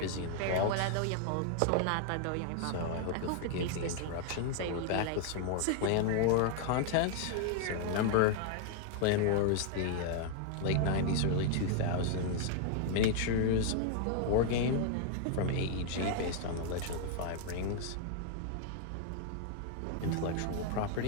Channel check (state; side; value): different; both; correlation 0.00